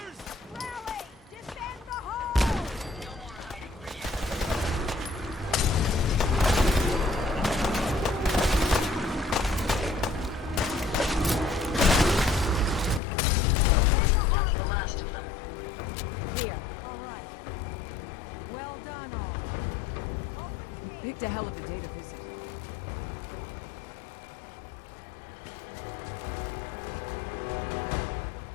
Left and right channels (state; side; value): drops out; right; at 13.0 s